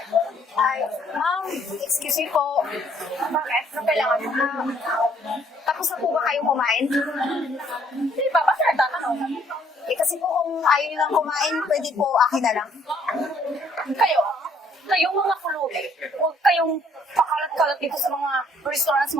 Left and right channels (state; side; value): normal; both; correlation 0.64